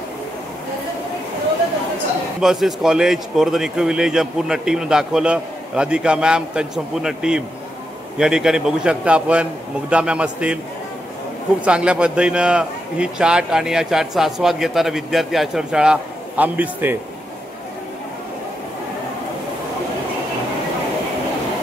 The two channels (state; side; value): normal; both; correlation 0.84